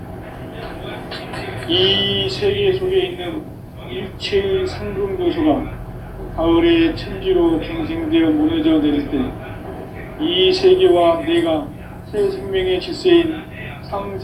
이 세계 속에 있는 일체의 상금 요소가 가을의 천지로 갱생되어 무너져 내릴 때 이 세계와 내가 새 생명의 질서인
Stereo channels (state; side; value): identical; both; correlation 1.00